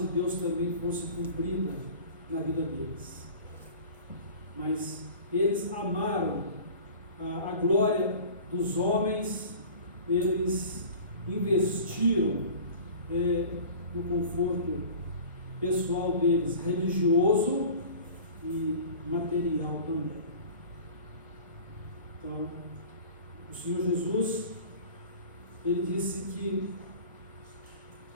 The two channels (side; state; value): both; inverted; correlation -0.41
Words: Deus também fosse cumprida na vida deles. Mas eles amaram a glória dos homens, eles investiram no conforto pessoal deles, religioso e material também. Então, o Senhor Jesus, ele disse que